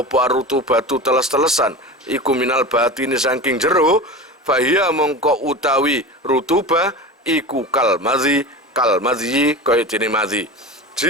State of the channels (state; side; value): normal; both; correlation 0.30